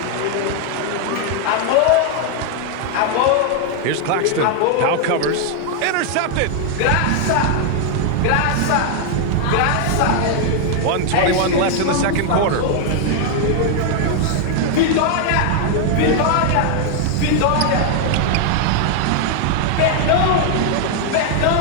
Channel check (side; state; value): both; different; correlation 0.00